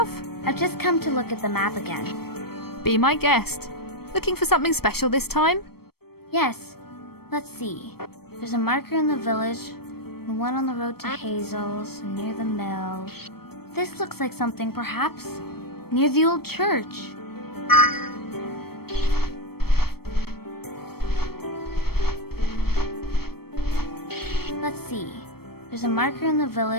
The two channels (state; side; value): late; right; 0.95 ms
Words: I've just come to look at the map again. Be my guest. Looking for something special this time? Yes. Let's see. There's a marker in the village, and one on the road to Hazel's, near the mill. This looks like something, perhaps, near the old church. Let's see. There's a marker in the